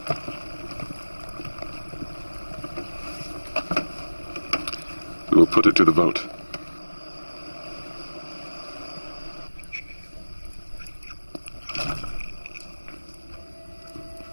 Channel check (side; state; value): both; inverted; correlation -1.00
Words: We will put it to the vote.